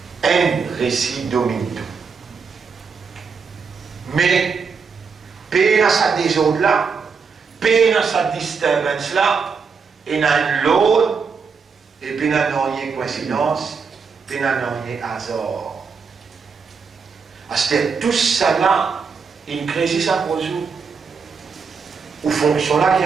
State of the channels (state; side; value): quieter; left; 5.5 dB